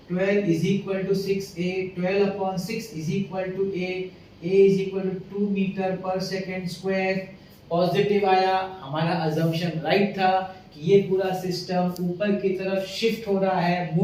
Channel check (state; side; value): identical; both; correlation 1.00